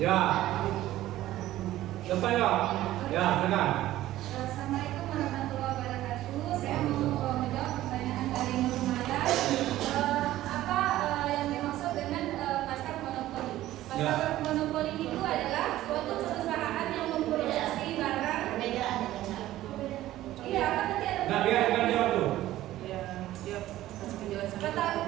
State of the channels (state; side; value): quieter; left; 14.8 dB